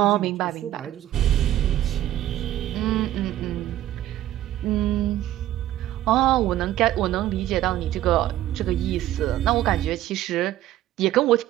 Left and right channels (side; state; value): left; quieter; 13.5 dB